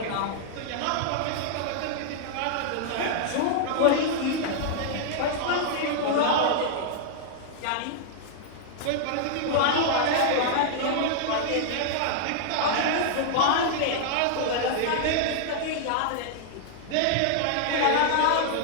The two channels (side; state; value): both; different; correlation -0.01